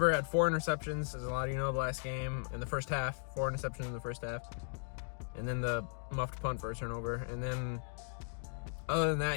had 4 interceptions, as a lot of you know, the last game in the first half. 4 interceptions in the first half. And then the muffed punt for a turnover. And then other than that,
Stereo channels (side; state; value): right; silent; digital silence